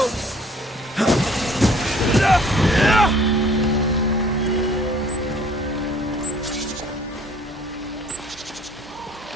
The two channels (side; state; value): both; normal; correlation 0.55